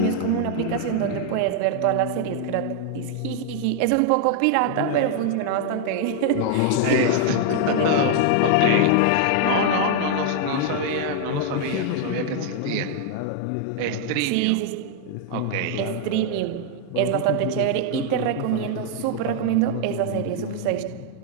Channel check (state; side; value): different; both; correlation 0.00